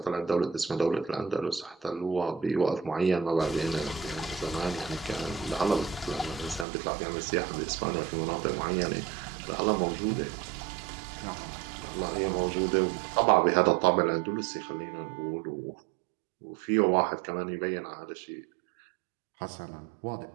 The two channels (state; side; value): drops out; left; at 6.7 s